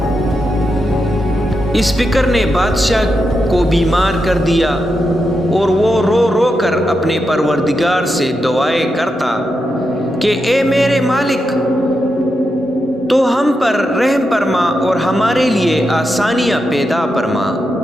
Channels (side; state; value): both; normal; correlation 0.86